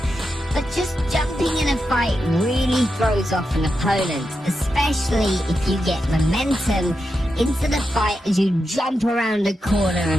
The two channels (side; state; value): both; normal; correlation 0.87